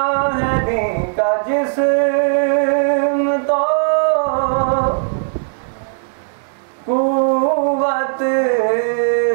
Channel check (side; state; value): left; silent; digital silence